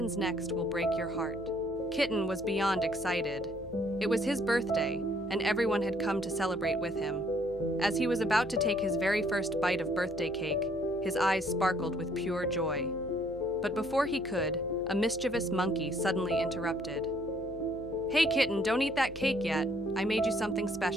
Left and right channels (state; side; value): noise; left; hum, 18 dB below the sound